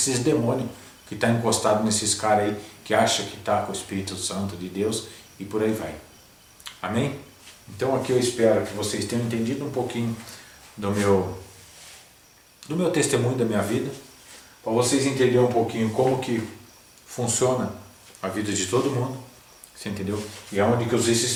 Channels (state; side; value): identical; both; correlation 1.00